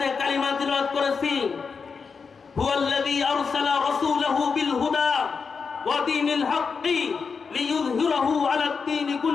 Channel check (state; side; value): quieter; right; 5.4 dB